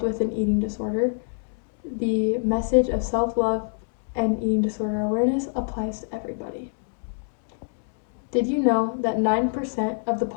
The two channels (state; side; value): silent; right; digital silence